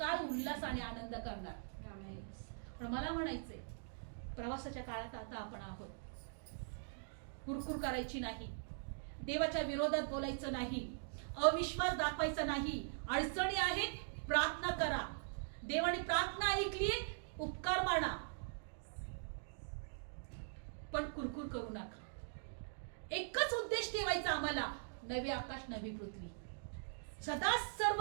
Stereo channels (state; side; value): silent; left; digital silence